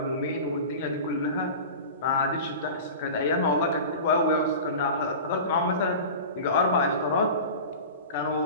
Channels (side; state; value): both; inverted; correlation -0.33